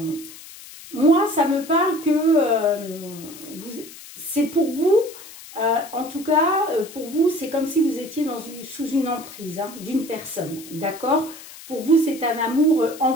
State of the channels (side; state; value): left; noise; hiss, 17 dB below the sound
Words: Moi, ça me parle que c'est pour vous, en tout cas, pour vous, c'est comme si vous étiez sous une emprise hein, d'une personne, d'accord? Pour vous, c'est un amour